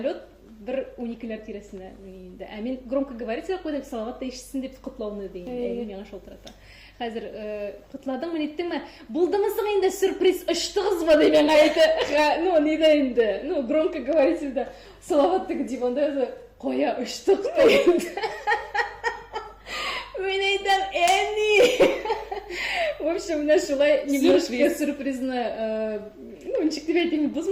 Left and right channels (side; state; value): both; identical; correlation 1.00